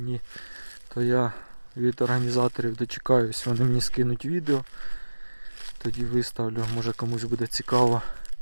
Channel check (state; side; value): inverted; both; correlation -1.00